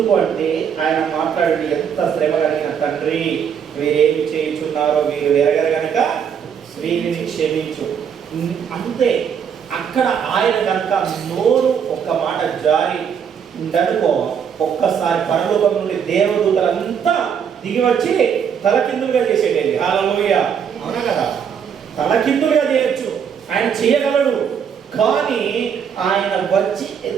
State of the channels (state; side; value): quieter; left; 7.6 dB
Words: అంటే ఆయన మాట్లాడి ఎంత శ్రమ కలిగిన తండ్రి, వీరేమి చేయించున్నారో వీరు ఎరగరు గనక వీరిని క్షమించు. అంతే. అక్కడ ఆయన కనుక నోరు ఒక్క మాట జారి ఉండనుకో, ఒక్కసారి పరలోకం నుండి దేవదూతలంతా దిగి వచ్చి తలకిందులుగా చేసేటది. హల్లెలూయా. అవునా కదా? తలకిందులుగా చేయొచ్చు, ఆయన చేయగలడు. కానీ ఆయన వచ్చి